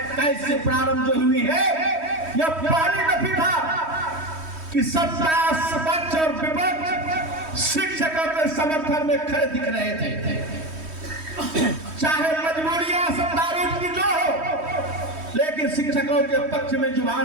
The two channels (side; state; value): left; late; 3.1 ms